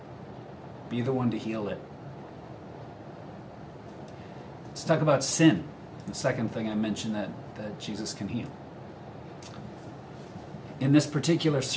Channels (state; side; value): identical; both; correlation 1.00